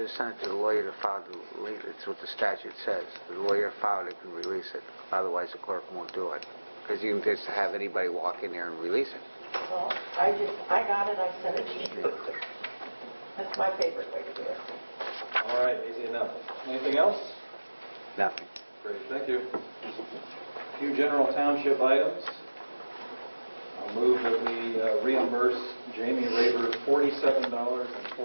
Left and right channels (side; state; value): both; inverted; correlation -1.00